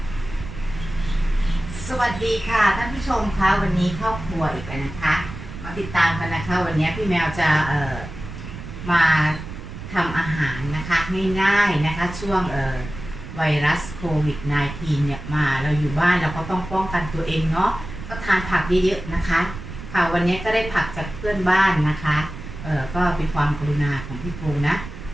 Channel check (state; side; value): noise; right; rumble, 11 dB below the sound